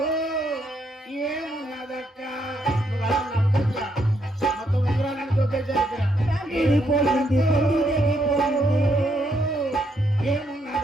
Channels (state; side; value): normal; both; correlation 0.75